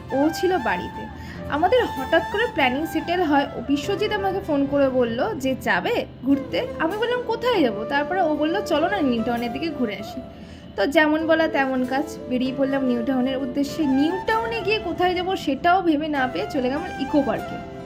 ও ছিল বাড়িতে। আমাদের হঠাৎ করে প্ল্যানিং সেটেল হয়। ও বিশ্বজিৎ আমাকে ফোন করে বলল যে যাবে ঘুরতে। আমি বললাম কোথায় যাব? তারপরে ও বলল চলো না নিউ টাউনের দিকে ঘুরে আসি। তো যেমন বলা তেমন কাজ, বেরিয়ে পড়লাম নিউ টাউনের উদ্দেশ্যে। নিউ টাউনে গিয়ে কোথায় যাব সেটাও ভেবে না পেয়ে চলে গেলাম ইকো পার্কে।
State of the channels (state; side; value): identical; both; correlation 1.00